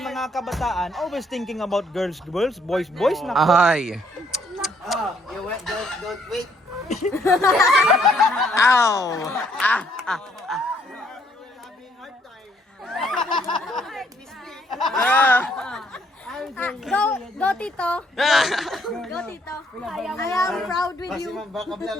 mga kabataan, always thinking about girls, boys, nako. Ay. You wait, don't wait. Ow. Go Tito. Go Tito. I am proud with Kasi you. man, baka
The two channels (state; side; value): normal; both; correlation 0.68